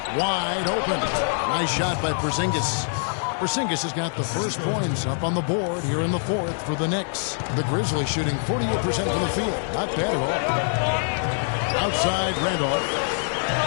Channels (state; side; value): silent; right; 62 dB below the other